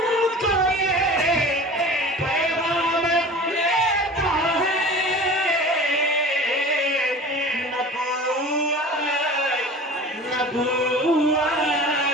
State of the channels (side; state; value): both; normal; correlation 0.38